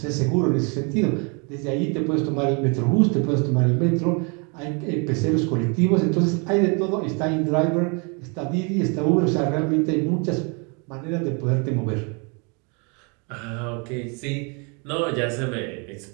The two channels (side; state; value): left; quieter; 33.8 dB